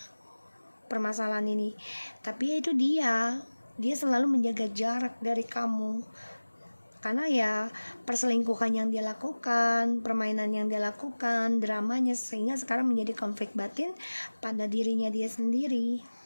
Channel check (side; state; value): both; inverted; correlation -1.00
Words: permasalahan ini. Tapi ya itu dia selalu menjaga jarak dari kamu karena ya perselingkuhan yang dia lakukan, permainan yang dia lakukan, dramanya, sehingga sekarang menjadi konflik batin pada dirinya dia sendiri.